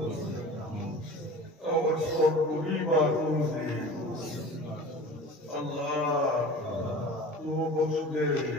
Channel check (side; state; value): both; normal; correlation 0.39